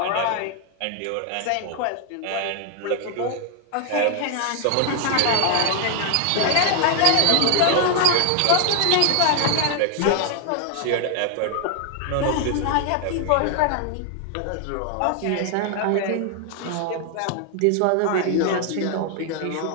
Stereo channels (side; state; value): both; different; correlation 0.00